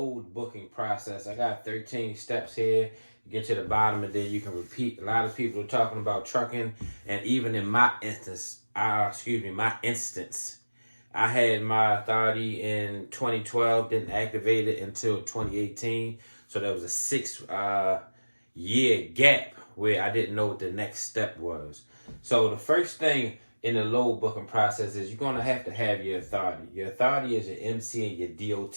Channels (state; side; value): inverted; both; correlation -1.00